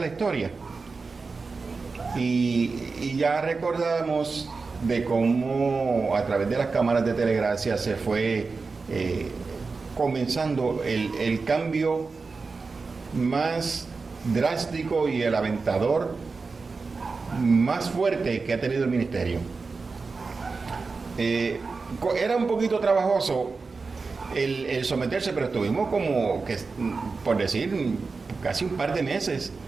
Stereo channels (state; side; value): quieter; left; 4.3 dB